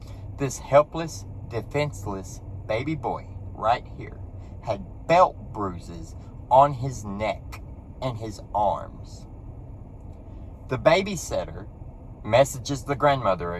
This helpless, defenseless baby boy right here had belt bruises on his neck and his arms. The babysitter messages the grandmother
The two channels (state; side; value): identical; both; correlation 1.00